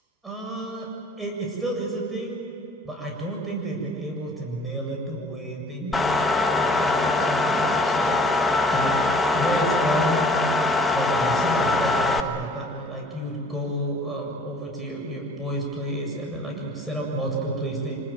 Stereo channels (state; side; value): normal; both; correlation 0.52